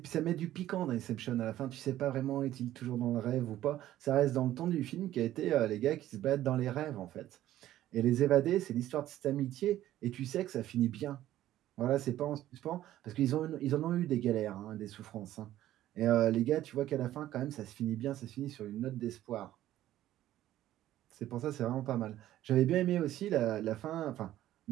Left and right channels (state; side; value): quieter; left; 13.5 dB